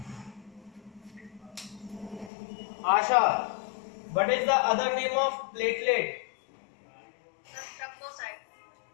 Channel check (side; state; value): right; drops out; at 2.3 s